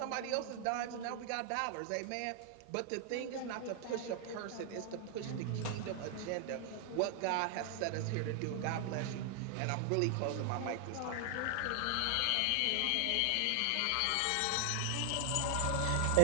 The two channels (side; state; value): both; different; correlation 0.00